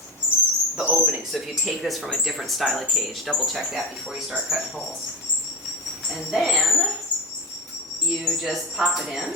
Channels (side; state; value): both; normal; correlation 0.23